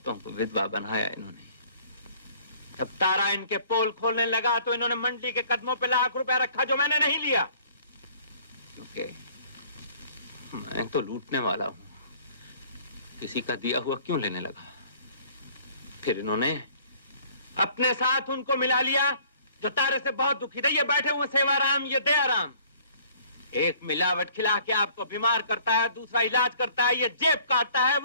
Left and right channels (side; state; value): both; inverted; correlation -0.55